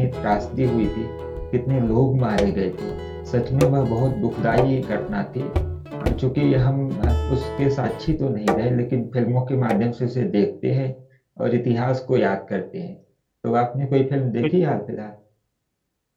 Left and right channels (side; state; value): both; identical; correlation 1.00